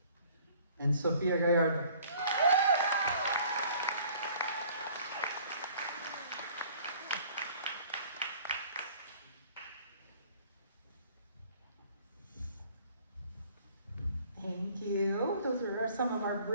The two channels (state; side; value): inverted; both; correlation -0.54